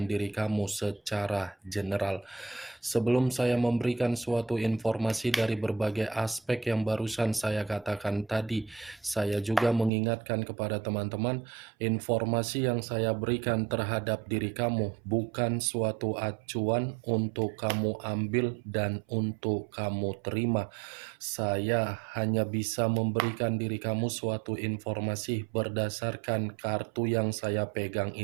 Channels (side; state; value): left; drops out; at 9.9 s